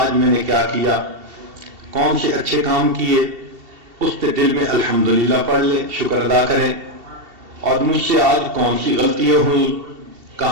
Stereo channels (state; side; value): late; left; 2.7 ms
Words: میں نے کیا کیا، کون سے اچھے کام کیے، اس پہ دل میں الحمدللہ پڑھ لیں، شکر ادا کریں، اور مجھ سے آج کون سی غلطیاں ہوئیں،